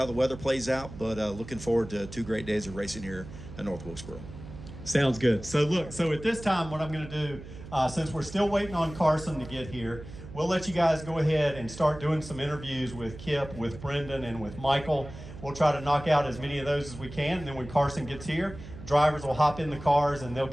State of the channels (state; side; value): noise; right; hum, 14 dB below the sound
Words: the weather plays out. But looking forward to 2 great days of racing here at North Wilkesboro. Sounds good. So look, so at this time, what I'm going to do, since we're still waiting on Carson to get here, we'll let you guys go ahead and start doing some interviews with Kip, with Brendan, and with Michael. We'll try to knock out as many of those as we can, and then when Carson gets here, drivers will hop in the cars and they'll